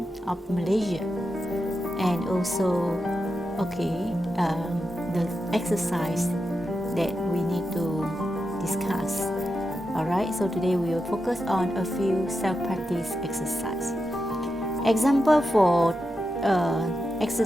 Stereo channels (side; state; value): both; normal; correlation 0.88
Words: of Malaysia, and also the exercise that we need to discuss. Alright, so today we will focus on a few self-practice exercise. Example for